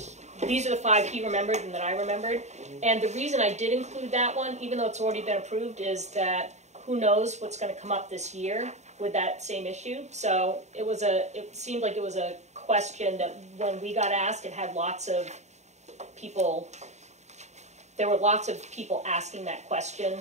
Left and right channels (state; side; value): late; left; 0.33 ms